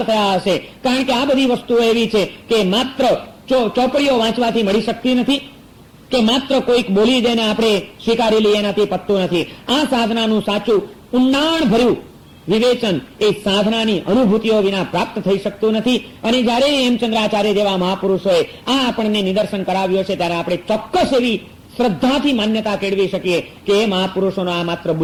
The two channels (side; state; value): both; identical; correlation 1.00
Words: થયા હશે. કારણ કે આ બધી વસ્તુઓ એવી છે કે માત્ર ચોપડીઓ વાંચવાથી મળી શકતી નથી કે માત્ર કોઈક બોલી દઈને આપણે સ્વીકારી લઈએ એનાથી પતતું નથી. આ સાધનાનું સાચું ઊંડાણ ભર્યું વિવેચન એ સાધનાની અનુભૂતિઓ વિના પ્રાપ્ત થઈ શકતું નથી. અને જયારે હેમચંદ્રાચાર્ય જેવા મહાપુરુષોએ આ આપણને નિદર્શન કરાવ્યો છે ત્યારે આપણે ચોક્કસ એવી શ્રદ્ધાથી માન્યતા કેળવી શકીએ કે એ મહાપુરુષોનો આ માત્ર